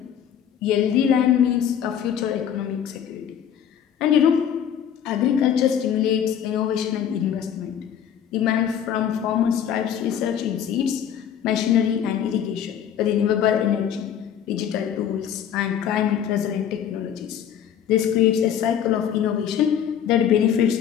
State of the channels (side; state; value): right; quieter; 9.1 dB